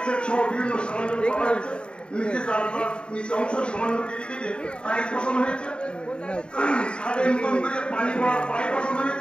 সেট সহ বিভিন্ন সরঞ্জাম করা হয়েছে। নিচে জানালার নিচে অংশ সামান্য কেটে টাইলস বসানো হয়েছে। ছাদে নতুন করে পানি পড়ার পাইপ বসানো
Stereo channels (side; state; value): right; late; 0.053 ms